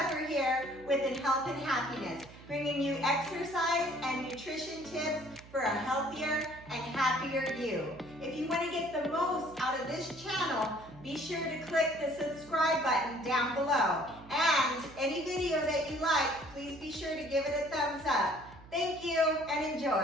here with Health and Happiness, bringing you exercise and nutrition tips for a healthier and happier you. If you want to get the most out of this channel, be sure to click the subscribe button down below. And any video that you like, please be sure to give it a thumbs up. Thank you and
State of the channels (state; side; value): noise; right; hum, 20 dB below the sound